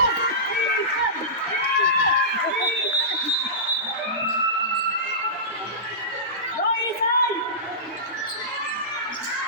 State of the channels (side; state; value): both; normal; correlation -0.19